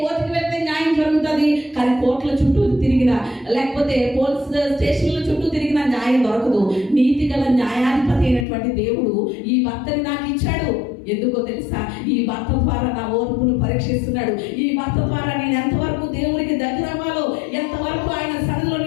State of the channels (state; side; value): drops out; right; at 8.5 s